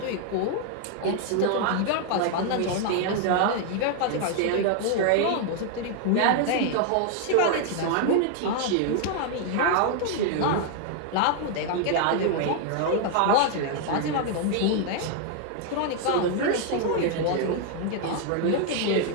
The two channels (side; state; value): both; different; correlation 0.00